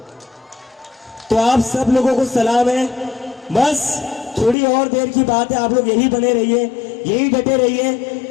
तो आप सब लोगों को सलाम है, बस थोड़ी और देर की बात है, आप लोग यही बने रहिए, यही डटे रहिए,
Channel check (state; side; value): drops out; right; at 4.5 s